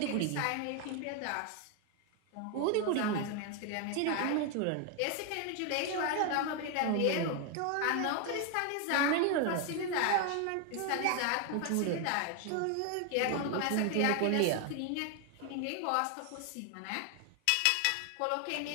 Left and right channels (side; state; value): both; different; correlation 0.01